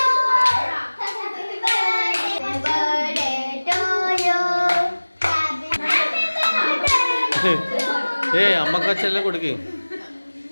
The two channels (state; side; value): inverted; both; correlation -1.00